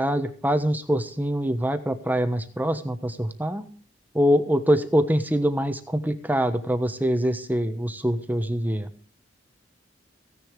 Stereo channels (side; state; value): both; normal; correlation 0.88